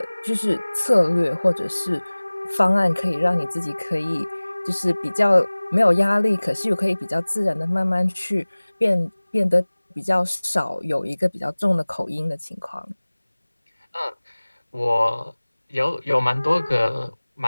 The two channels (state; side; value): inverted; both; correlation -1.00